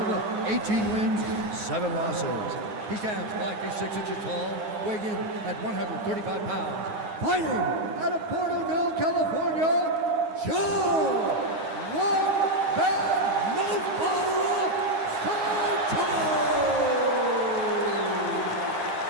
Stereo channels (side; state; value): left; late; 9.4 ms